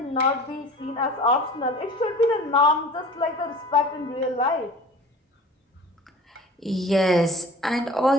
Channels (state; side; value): normal; both; correlation 0.42